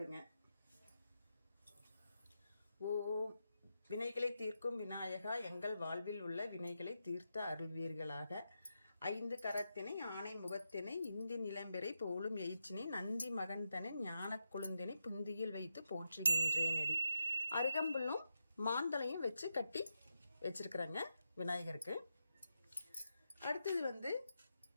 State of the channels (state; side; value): inverted; both; correlation -0.87